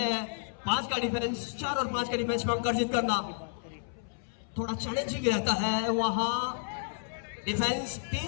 हैं। 5 का डिफेंस, 4 और 5 का डिफेंस में अंक अर्जित करना थोड़ा चैलेंजिंग रहता है। वहां डिफेंस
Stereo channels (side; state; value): right; silent; 57 dB below the other